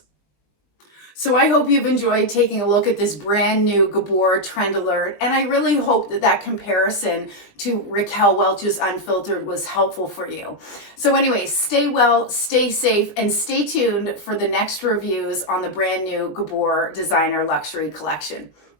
So I hope you've enjoyed taking a look at this brand new Gabor Trend Alert, and I really hope that that comparison to Raquel Welch's Unfiltered was helpful for you. So anyway, stay well, stay safe, and stay tuned for the next reviews on the brand new Gabor Designer Luxury Collection.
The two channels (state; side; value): late; right; 20 ms